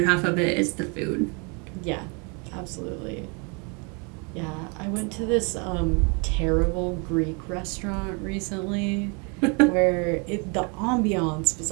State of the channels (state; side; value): quieter; left; 33.5 dB